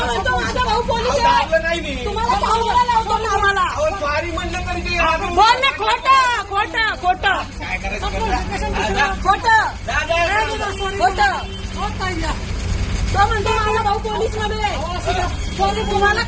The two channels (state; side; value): identical; both; correlation 1.00